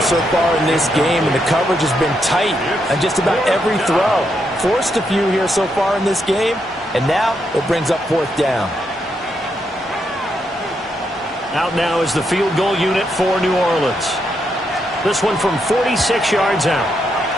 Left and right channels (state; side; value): normal; both; correlation 0.80